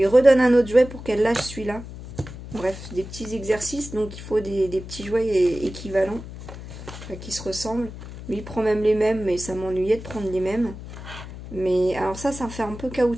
redonne un autre jouet pour qu'elle lâche celui-là. Bref, des petits exercices, donc il faut des petits jouets équivalents, qui se ressemblent. Lui, il prend même les mêmes, mais ça m'ennuyait de prendre les mêmes. Mais alors ça fait un peu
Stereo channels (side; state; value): left; noise; hum, 12 dB below the sound